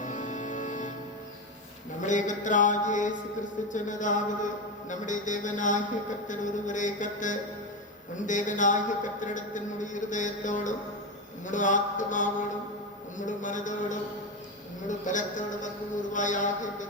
நம்முடைய கர்த்தராகிய இயேசு கிறிஸ்து சொன்னதாவது, நம்முடைய தேவனாகிய கர்த்தர் ஒருவரே கர்த்தர். உன் தேவனாகிய கர்த்தரிடத்தின் உன்னுடைய இருதயத்தோடும் உன்னுடைய ஆத்மாவோடும் உன்னுடைய மனதோடும் உன்னுடைய பலத்தோடும் அன்பு கூறுவாயாக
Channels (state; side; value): normal; both; correlation 0.15